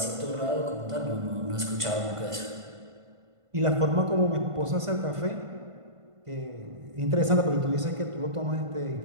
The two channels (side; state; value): left; late; 1.5 ms